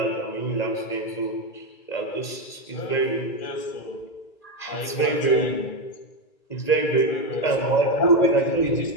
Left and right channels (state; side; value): late; right; 1.8 ms